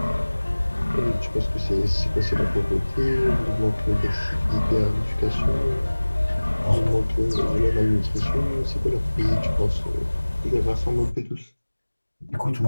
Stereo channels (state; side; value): inverted; both; correlation -1.00